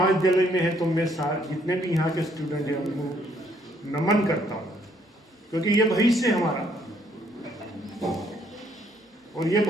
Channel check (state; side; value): normal; both; correlation 0.68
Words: में है तो मैं जितने भी यहाँ के स्टूडेंट हैं उनको नमन करता हूँ, क्योंकि ये भविष्य है हमारा और ये